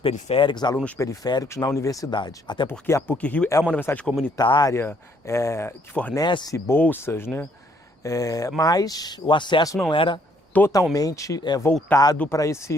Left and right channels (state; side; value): normal; both; correlation 0.67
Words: periféricos na universidade. Até porque a PUC-Rio é uma universidade comunitária, que fornece bolsas, né? Mas o acesso não era totalmente voltado para